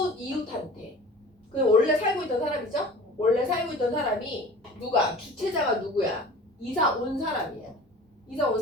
이웃한테. 그 원래 살고 있던 사람이죠? 원래 살고 있던 사람이 누가? 주체자가 누구야? 이사 온 사람이야. 이사 온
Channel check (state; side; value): normal; both; correlation 0.41